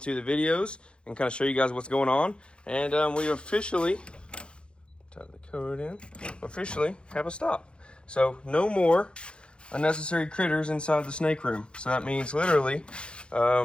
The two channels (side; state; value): right; late; 0.055 ms